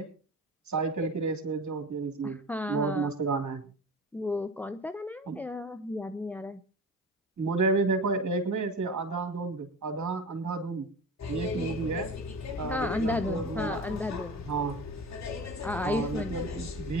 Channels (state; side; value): normal; both; correlation 0.32